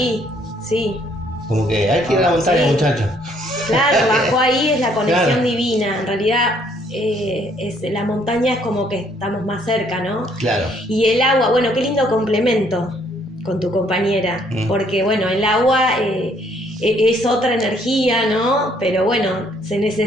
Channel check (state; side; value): normal; both; correlation 0.66